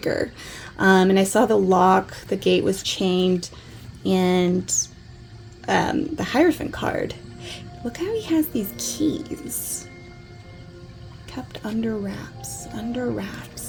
and I saw the lock, the gate was chained, and the Hierophant card. Look how he has these keys kept under wraps, under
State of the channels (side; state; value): both; identical; correlation 1.00